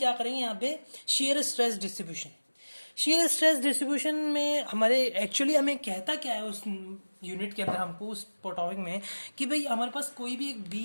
करेंगे यहाँ पे, shear stress distribution. Shear stress distribution में हमारे एक्चुअली हमें कहता क्या है उस यूनिट के अंदर हमको, उस टॉपिक में, कि भाई हमारे पास कोई भी एक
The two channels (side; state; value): both; inverted; correlation -1.00